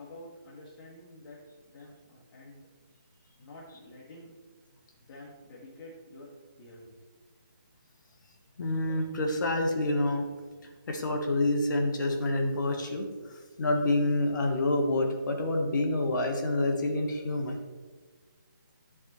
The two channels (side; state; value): both; inverted; correlation -0.74